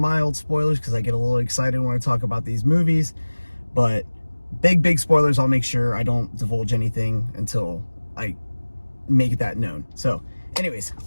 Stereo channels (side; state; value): both; inverted; correlation -1.00